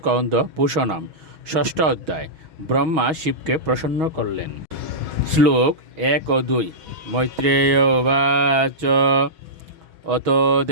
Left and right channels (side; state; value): left; late; 6.3 ms